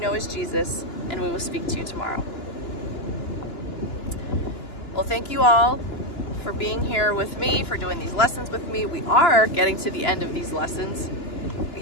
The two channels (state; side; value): late; right; 2.9 ms